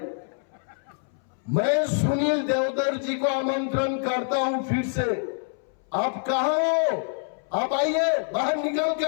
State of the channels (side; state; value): right; silent; 61 dB below the other